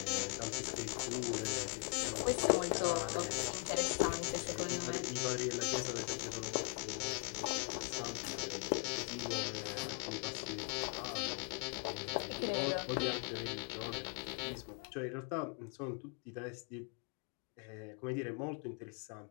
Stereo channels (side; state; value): right; quieter; 37.1 dB